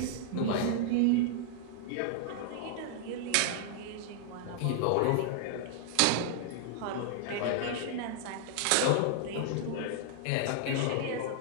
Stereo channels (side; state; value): both; different; correlation -0.01